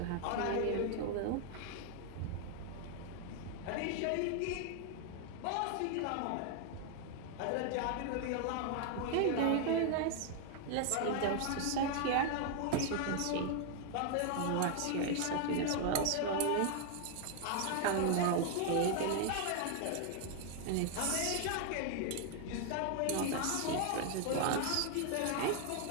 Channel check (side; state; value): both; different; correlation 0.00